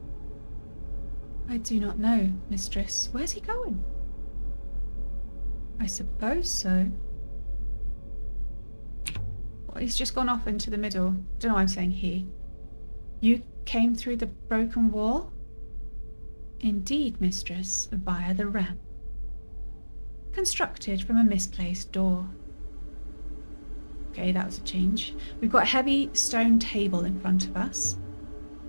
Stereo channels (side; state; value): both; inverted; correlation -1.00